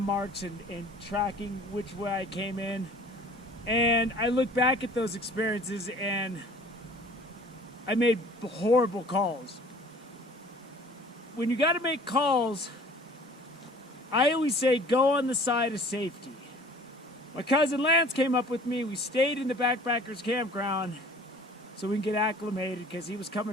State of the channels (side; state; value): both; normal; correlation 0.49